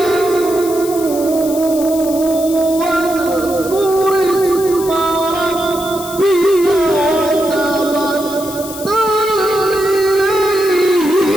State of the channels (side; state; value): left; noise; hiss, 12 dB below the sound